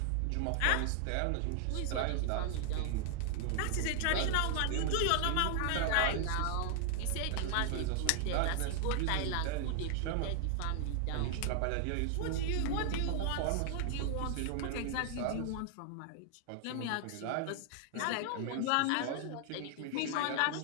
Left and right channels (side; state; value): both; different; correlation 0.00